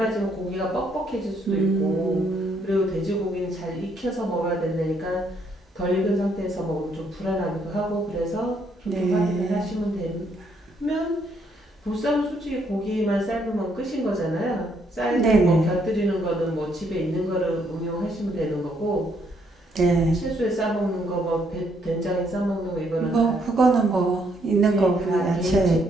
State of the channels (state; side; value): normal; both; correlation 0.71